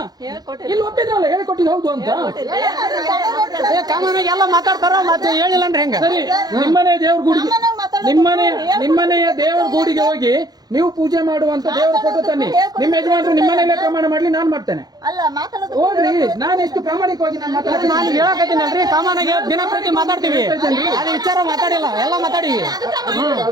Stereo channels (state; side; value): late; left; 0.19 ms